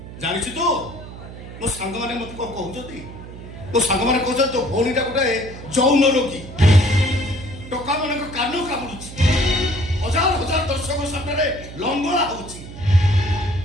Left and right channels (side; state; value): right; noise; hum, 13 dB below the sound